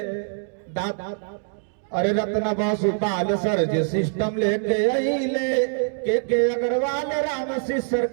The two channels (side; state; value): left; silent; digital silence